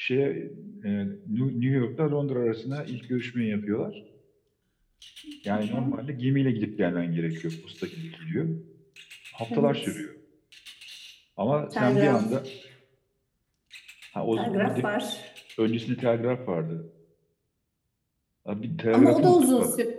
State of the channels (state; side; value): identical; both; correlation 1.00